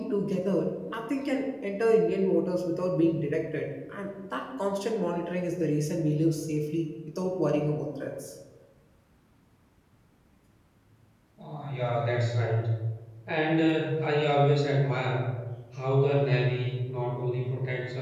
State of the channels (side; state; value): both; identical; correlation 1.00